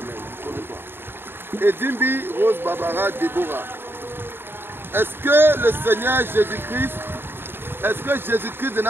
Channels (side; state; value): left; late; 0.10 ms